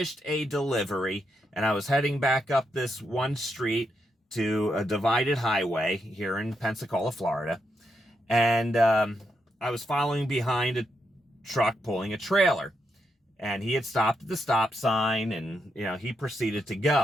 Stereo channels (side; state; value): both; normal; correlation 0.82